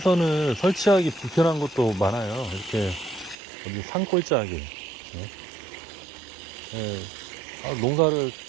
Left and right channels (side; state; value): left; drops out; at 3.4 s